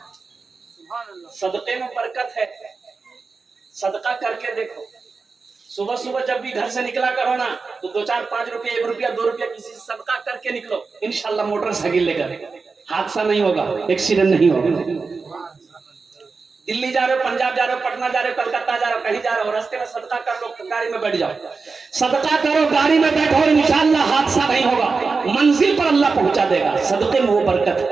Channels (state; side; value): quieter; left; 4.5 dB